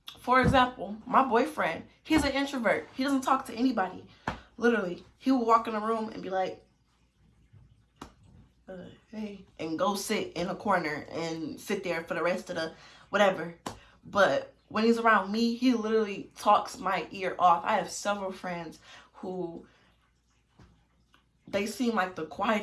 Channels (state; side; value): identical; both; correlation 1.00